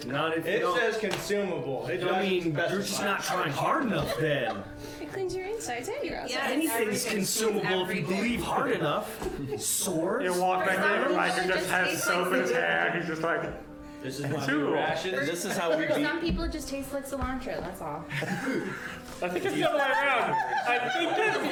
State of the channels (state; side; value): identical; both; correlation 1.00